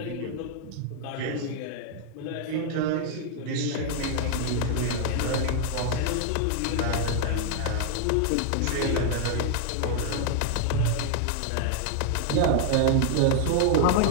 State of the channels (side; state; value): both; different; correlation 0.00